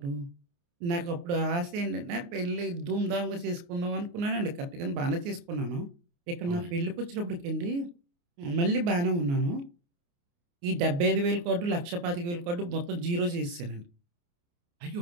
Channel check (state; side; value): late; left; 29 ms